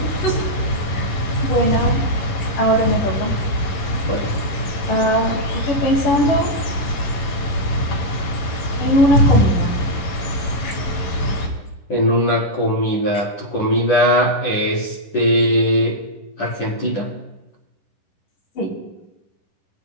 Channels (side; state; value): right; late; 11 ms